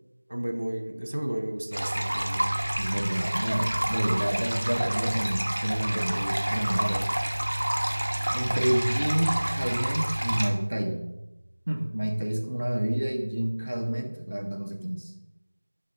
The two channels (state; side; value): inverted; both; correlation -1.00